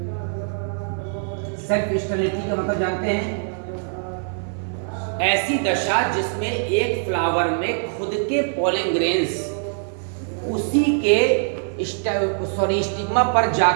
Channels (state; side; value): silent; left; 60 dB below the other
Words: सेल्फ स्टेरिलिटी का मतलब जानते हैं, ऐसी दशा जिसमें एक फ्लावर में खुद के पॉलिन ग्रेन्स उसी के स्टिग्मा पर